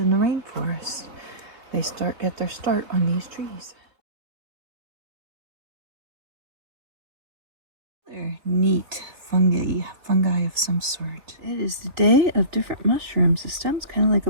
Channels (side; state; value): left; late; 3.5 ms